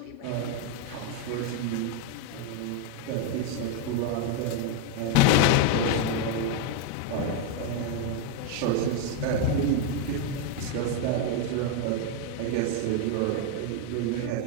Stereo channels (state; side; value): different; both; correlation 0.01